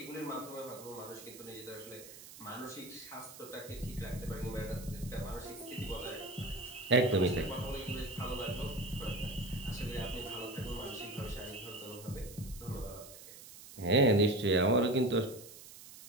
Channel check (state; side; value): noise; right; hiss, 16 dB below the sound